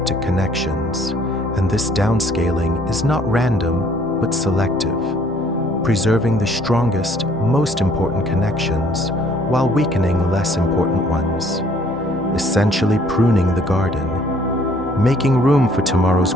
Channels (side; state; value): both; normal; correlation 0.60